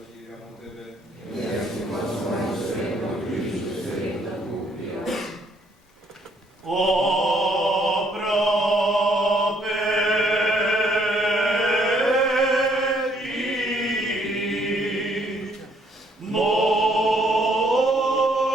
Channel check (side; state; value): both; normal; correlation 0.67